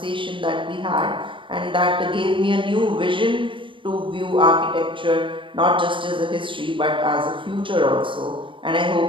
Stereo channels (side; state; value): left; late; 0.25 ms